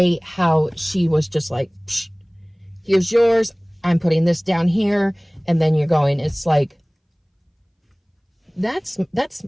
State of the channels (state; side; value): identical; both; correlation 1.00